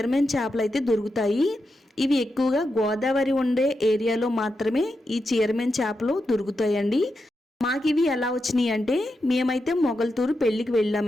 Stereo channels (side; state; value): both; normal; correlation 0.87